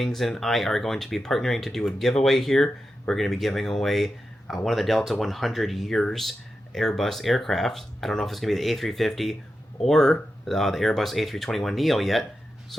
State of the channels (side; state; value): both; normal; correlation 0.90